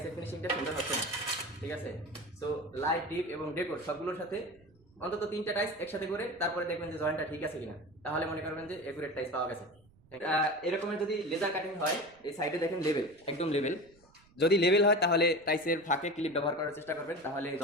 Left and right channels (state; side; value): noise; right; rumble, 30 dB below the sound